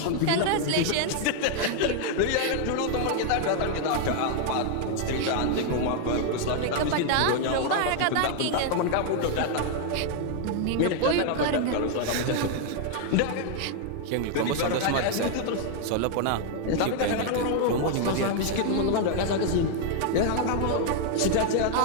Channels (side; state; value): both; different; correlation 0.00